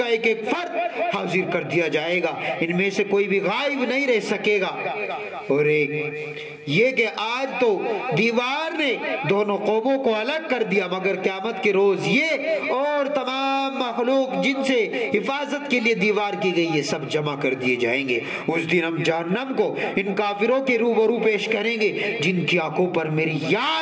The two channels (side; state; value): both; identical; correlation 1.00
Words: ایک ایک فرد حاضر کر دیا جائے گا، ان میں سے کوئی بھی غائب نہیں رہ سکے گا۔ اور ایک یہ کہ آج تو دیوار نے دونوں قوموں کو الگ کر دیا، مگر قیامت کے روز یہ اور تمام مخلوق جن سے حفاظت کے لیے دیوار کی گئی، یہ سب جمع کر دیے جائیں گے۔ اس دن ہم جہنم کو ان کافروں کے روبرو پیش کریں گے جن کی آنکھوں پر میری